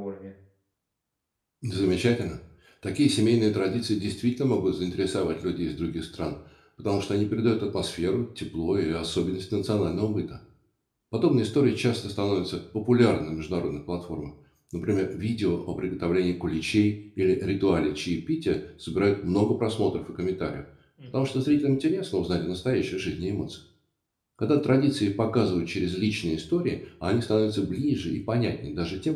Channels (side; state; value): both; identical; correlation 1.00